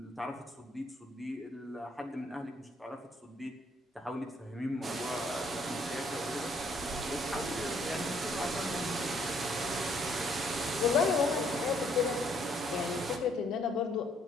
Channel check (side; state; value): both; normal; correlation 0.66